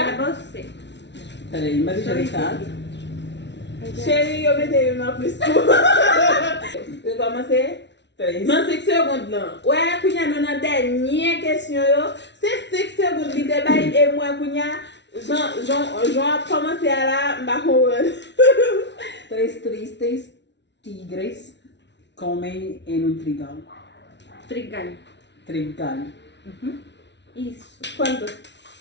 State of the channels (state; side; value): late; right; 0.51 ms